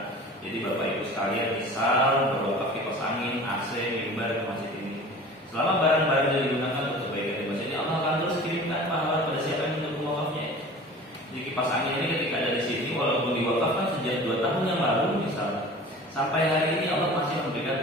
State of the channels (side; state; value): both; normal; correlation 0.41